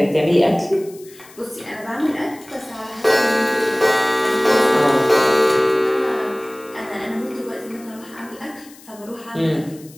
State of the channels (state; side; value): noise; left; hiss, 23 dB below the sound